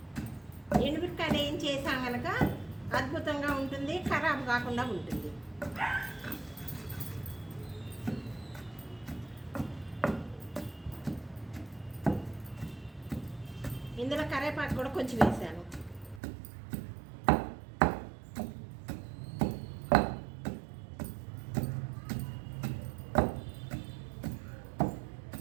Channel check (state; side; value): drops out; left; at 16.2 s